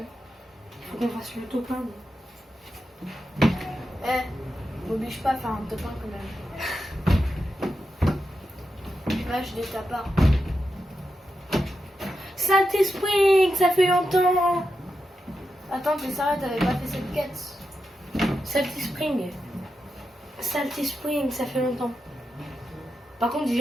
Il faut qu'on fasse le top 1. M'oblige pas à faire un top 1 quand même. Là, je ta part. Salty Spring, ça fait longtemps. Attends, t'es sérieux, t'avais pas fait cette quête? Salty Spring. Salty Spring, ça fait longtemps. Par contre,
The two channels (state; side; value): normal; both; correlation 0.88